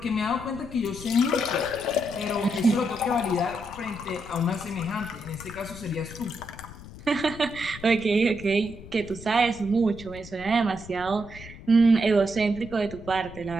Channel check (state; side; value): noise; left; rumble, 16 dB below the sound